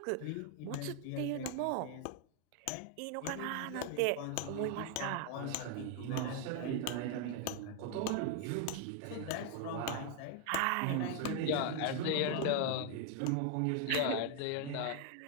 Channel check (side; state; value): both; different; correlation 0.00